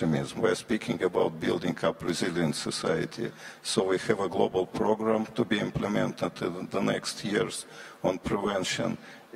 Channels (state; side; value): identical; both; correlation 1.00